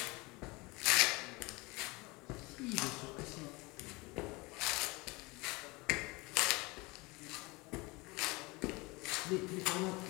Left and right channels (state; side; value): quieter; right; 24.7 dB